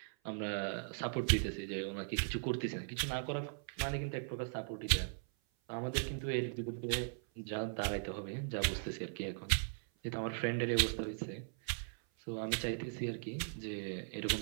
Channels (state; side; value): silent; left; 52 dB below the other